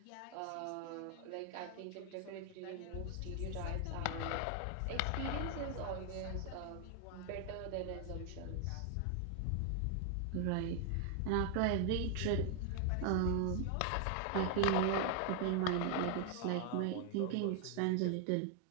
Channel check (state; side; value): different; both; correlation 0.00